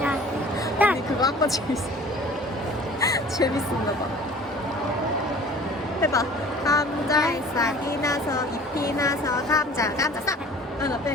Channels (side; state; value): both; normal; correlation 0.46